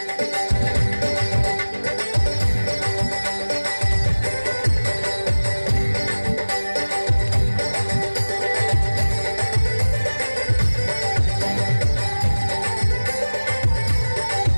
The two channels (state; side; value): inverted; both; correlation -1.00